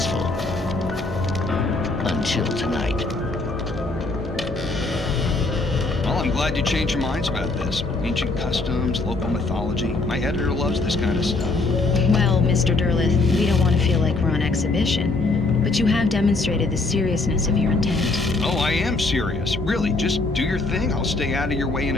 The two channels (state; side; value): quieter; right; 3.3 dB